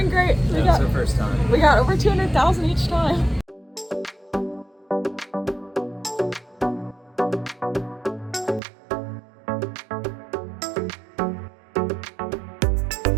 great. That's our first time. We got over 200,000 each time.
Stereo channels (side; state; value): left; drops out; at 8.6 s